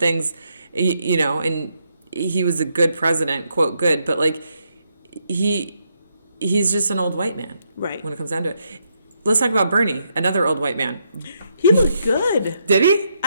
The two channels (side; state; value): both; inverted; correlation -0.78